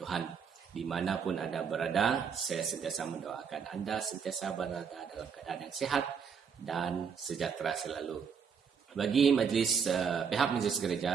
Dimanapun Anda berada, saya sentiasa mendoakan Anda sentiasa berada dalam keadaan yang sehat dan sejahtera selalu. Bagi pihak majlis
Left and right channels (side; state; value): left; quieter; 6.6 dB